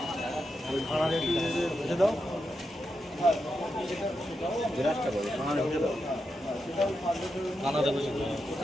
দাও কানাডা বসে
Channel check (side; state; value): both; normal; correlation 0.86